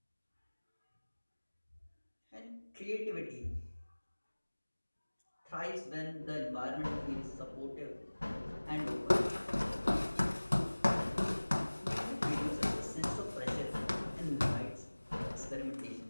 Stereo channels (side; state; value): both; inverted; correlation -1.00